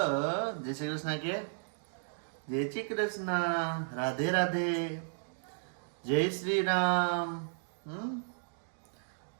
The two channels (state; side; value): silent; left; digital silence